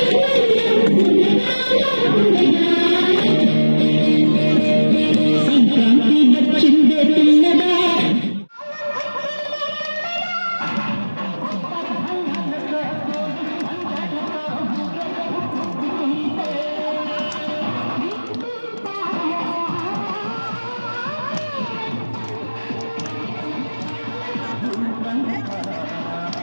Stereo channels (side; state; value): both; inverted; correlation -1.00